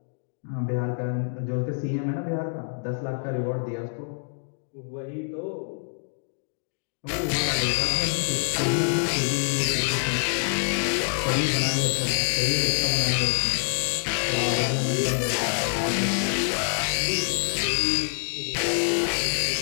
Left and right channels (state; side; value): silent; right; digital silence